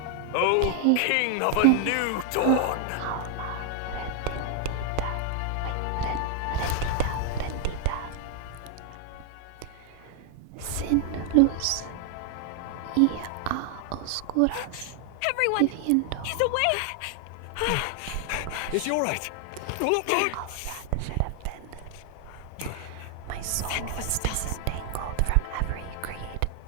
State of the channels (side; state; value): both; different; correlation 0.00